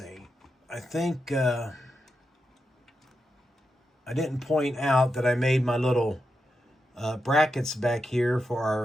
I think I didn't point out that I made my little brackets back here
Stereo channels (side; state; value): both; normal; correlation 0.87